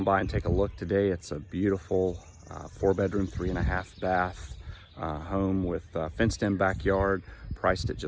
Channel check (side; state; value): both; identical; correlation 1.00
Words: by and take a look today. It's a beautiful 4-bedroom, 3.5 bath home with fenced in backyard, priced at